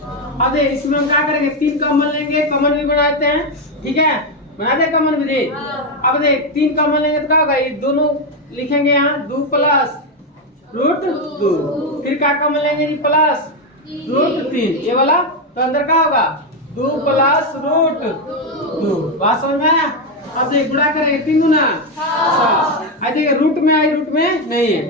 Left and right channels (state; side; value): normal; both; correlation 0.07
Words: अब देख इसमें हम क्या करेंगे? 3 कॉमन लेंगे, कॉमन भी बनाते हैं, ठीक है, बनाते हैं कॉमन भी। अब देख 3 कॉमन लेंगे तो क्या होगा? ये दोनों लिखेंगे यहाँ 2 प्लस रूट 2, फिर क्या कॉमन लेंगे जी? प्लस रूट 3 ये वाला, तो अंदर क्या होगा? 2 प्लस रूट 2। बात समझ में आया? अब देख गुणा करेंगे 3 गुना 6। देखिए रूट में आई, रूट में नहीं है,